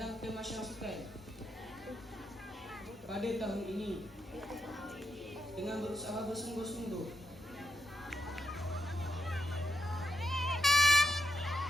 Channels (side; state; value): both; normal; correlation 0.82